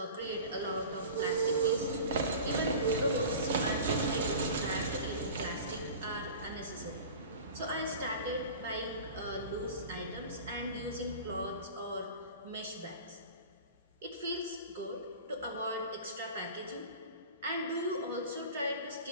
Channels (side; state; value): both; inverted; correlation -0.37